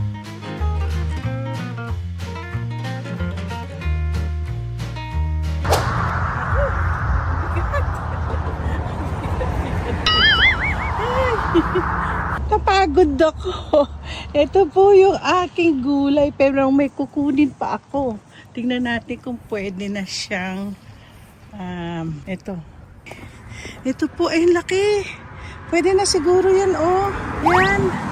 Kapagod ako. Ito po yung aking gulay, pero may kukunin pa ako. Tingnan natin kung pwede na siyang, ito. Ito po ay laki. Pwede na siguro yan, oh.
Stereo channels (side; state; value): both; identical; correlation 1.00